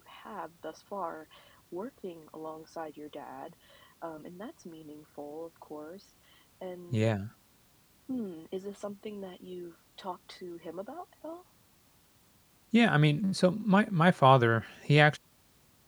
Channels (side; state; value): both; identical; correlation 1.00